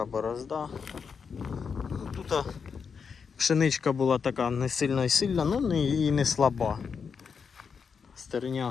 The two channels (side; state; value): right; quieter; 6.0 dB